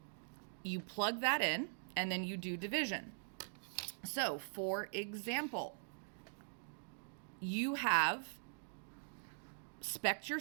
you plug that in and then you do division. So for example, you have spec'd your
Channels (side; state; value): left; silent; digital silence